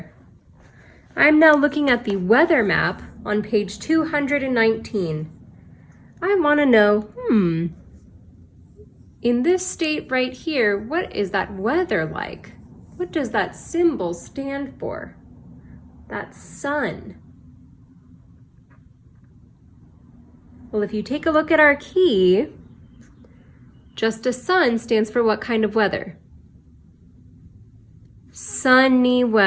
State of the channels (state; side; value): identical; both; correlation 1.00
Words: I'm now looking at the weather map on page 219. I want to know, in this state right here, what is that weather like? What does that symbol stand for? That sun. Well, if you take a look at our key, just a sun stands for what kind of weather? Sunny